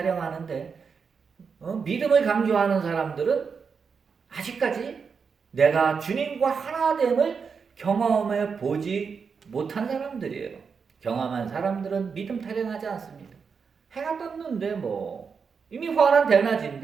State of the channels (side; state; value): left; quieter; 5.8 dB